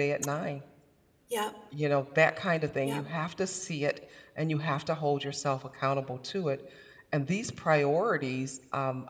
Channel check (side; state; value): both; identical; correlation 1.00